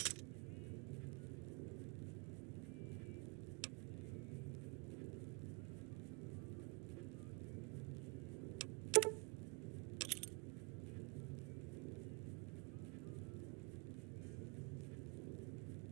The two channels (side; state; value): left; quieter; 30.7 dB